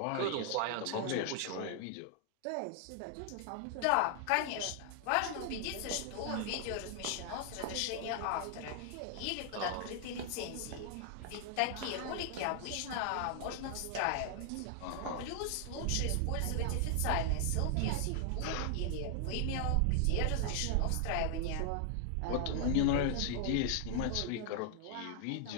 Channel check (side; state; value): both; different; correlation 0.00